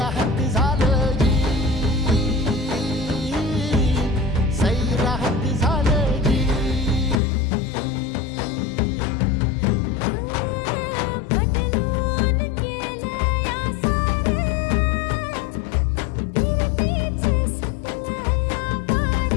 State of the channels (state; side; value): drops out; right; at 7.2 s